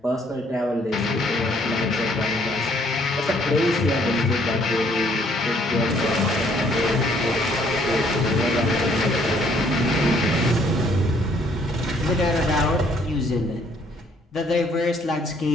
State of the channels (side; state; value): both; normal; correlation 0.64